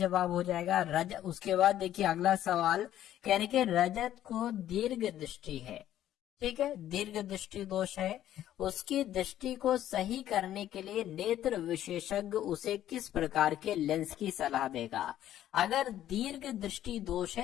हो जाएगा। उसके बाद देखिए अगला सवाल, कहने के रजत को दीर्घ दृष्टि है, ठीक है, दीर्घ दृष्टि दोष है, उसकी दृष्टि को सही करने के लिए नेत्र विशेषज्ञ उसे किस प्रकार के लेंस की सलाह देगा। अगर दीर्घ दृष्टि दोष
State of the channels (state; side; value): quieter; right; 12.2 dB